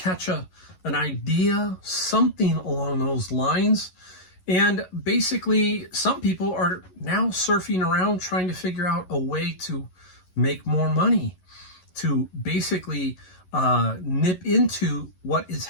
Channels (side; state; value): right; late; 11 ms